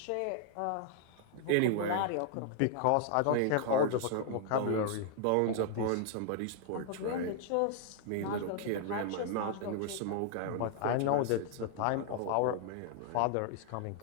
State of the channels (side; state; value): both; different; correlation 0.00